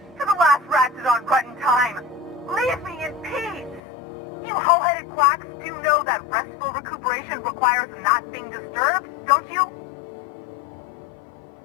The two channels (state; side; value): drops out; right; at 3.8 s